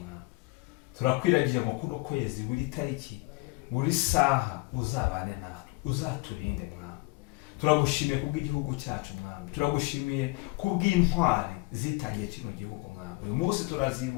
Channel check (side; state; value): right; quieter; 24.7 dB